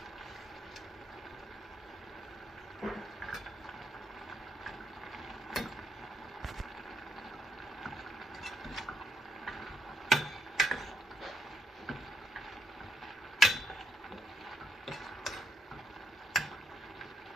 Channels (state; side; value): normal; both; correlation 0.77